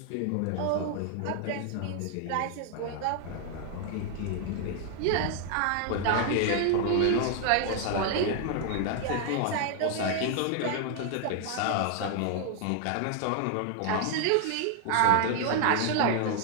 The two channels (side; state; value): both; different; correlation 0.00